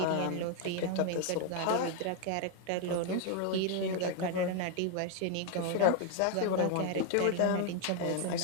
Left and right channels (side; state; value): both; different; correlation 0.01